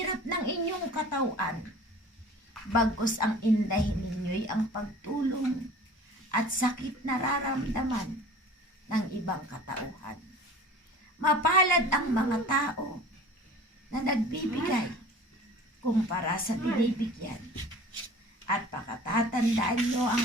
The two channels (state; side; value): normal; both; correlation 0.43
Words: ng inyong katawan. Bagkus ang indahin ninyo'y ang pagtulong at sakit nararamdaman ng ibang katauhan. Mapalad ang mga tao na nagbibigay kumpara sa binibigyan. At pakatatandaan nyo ang